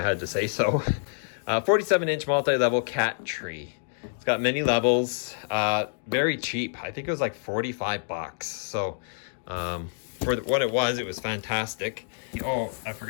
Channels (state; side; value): silent; right; 60 dB below the other